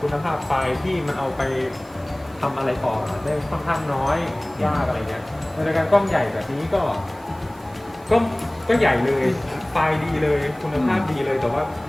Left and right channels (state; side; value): noise; right; hiss, 27 dB below the sound